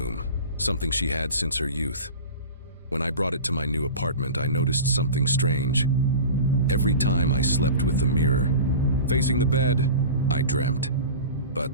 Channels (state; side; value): inverted; both; correlation -0.34